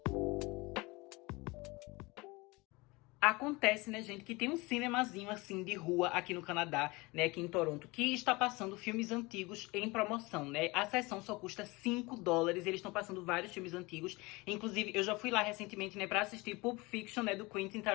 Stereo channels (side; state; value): right; quieter; 24.1 dB